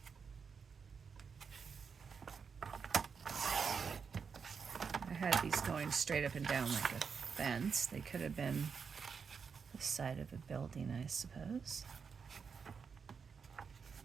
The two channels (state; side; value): quieter; left; 6.0 dB